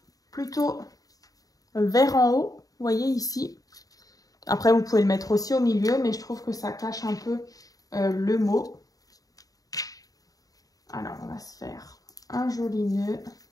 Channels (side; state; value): right; late; 0.18 ms